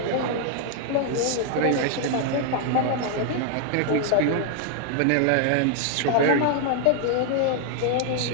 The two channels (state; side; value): different; both; correlation 0.00